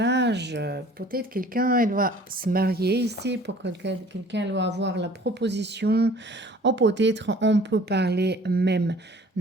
Peut-être quelqu'un, elle va se marier ici, pour quelqu'un, elle va avoir la proposition. Ou peut-être, on peut parler même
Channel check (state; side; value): normal; both; correlation 0.50